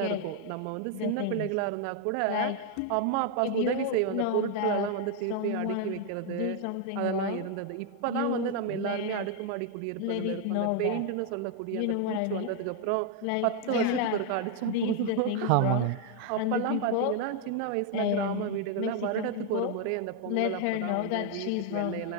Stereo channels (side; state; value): both; different; correlation 0.00